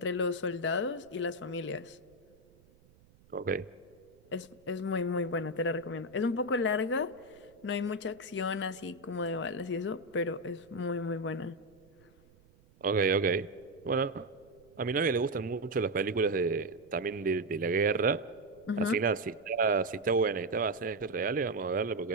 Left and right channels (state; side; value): noise; right; rumble, 29 dB below the sound